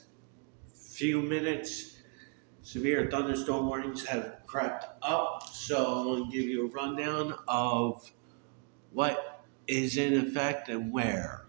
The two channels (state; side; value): quieter; left; 36.4 dB